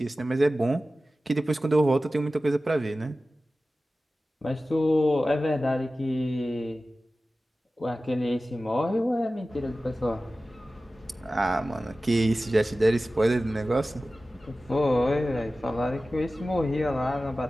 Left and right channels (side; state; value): both; normal; correlation 0.95